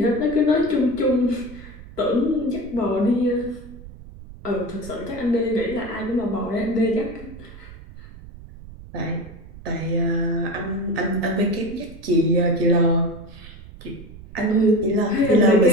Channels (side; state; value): right; noise; rumble, 17 dB below the sound